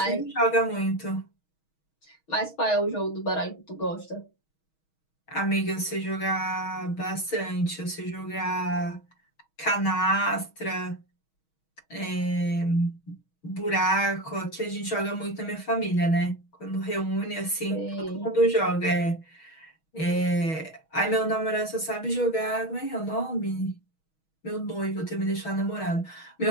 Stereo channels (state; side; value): late; right; 6.3 ms